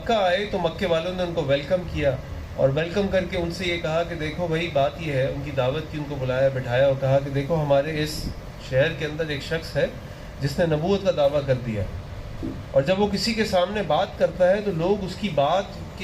آئے تو مکے والوں نے ان کو ویلکم کیا، اور ویلکم کر کے ان سے یہ کہا کہ دیکھو بھائی، بات یہ ہے، ان کی دعوت کی، ان کو بلایا بٹھایا اور کہا کہ دیکھو ہمارے اس شہر کے اندر ایک شخص ہے جس نے نبوت کا دعویٰ کر دیا، اور جب وہ کسی کے سامنے بات کرتا ہے تو لوگ اس کی بات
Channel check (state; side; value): identical; both; correlation 1.00